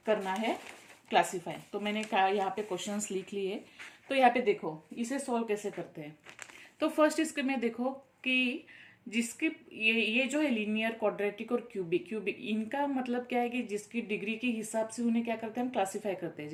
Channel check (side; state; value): both; identical; correlation 1.00